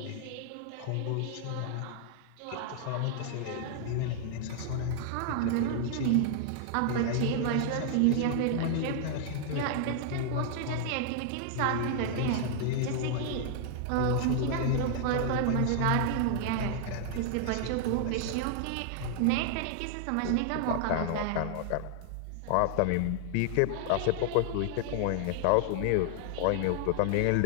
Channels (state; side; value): different; both; correlation 0.00